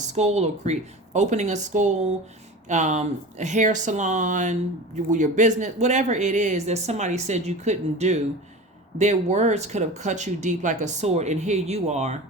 or opening a school, a hair salon, your business, whatever it is that somebody said you couldn't do. Their words could have cut you deep like a sword, and here you are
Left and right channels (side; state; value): both; normal; correlation 0.33